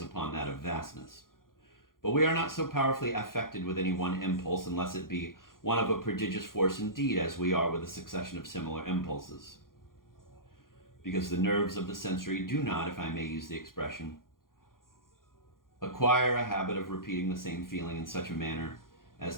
upon that of vastness. But we are not so powerfully affected with any one impulse, unless it be one of a prodigious force indeed, as we are with a succession of similar impulses. Because the nerves of the sensory do not, if I may use the expression, acquire a habit of repeating the same feeling in such a manner as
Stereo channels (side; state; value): right; late; 0.91 ms